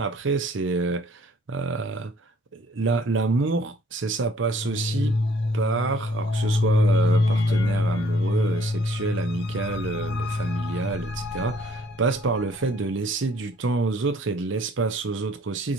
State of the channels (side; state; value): both; normal; correlation 0.60